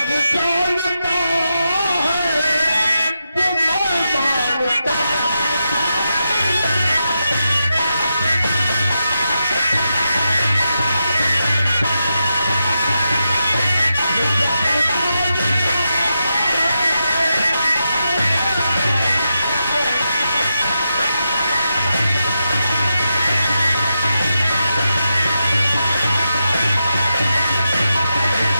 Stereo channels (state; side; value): inverted; both; correlation -0.86